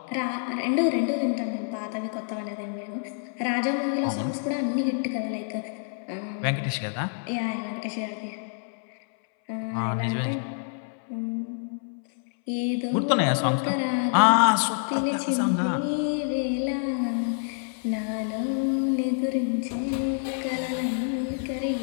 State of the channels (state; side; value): silent; right; 60 dB below the other